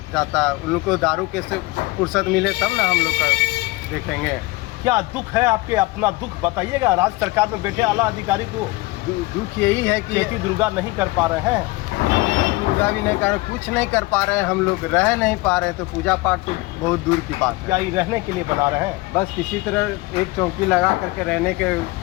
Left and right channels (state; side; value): quieter; right; 21.8 dB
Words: जाता। उन लोग को दारू कैसे फुर्सत मिले तब ना हम लोग का देखेंगे। क्या दुख है आपके? अपना दुख बताइएगा। राज्य सरकार में बैठे आला अधिकारी को दुख यही है कि चैती दुर्गा नहीं कर पा रहे हैं। दुर्गा भी नहीं कर, कुछ नहीं कर पा रहे हैं। हम लोग रह नहीं पा रहे हैं, तो पूजा पाठ तो बहुत दूर की बात है। क्या ये रहने के लिए बना रहे हैं? बस किसी तरह एक चौकी लगा करके रहने के